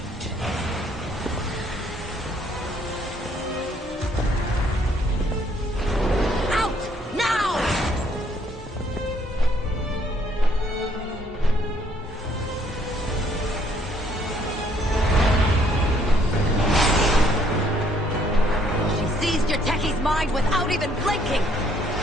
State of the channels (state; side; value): normal; both; correlation 0.66